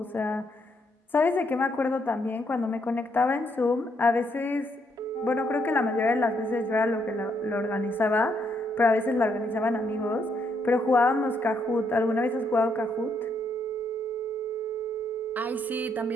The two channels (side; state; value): both; normal; correlation 0.75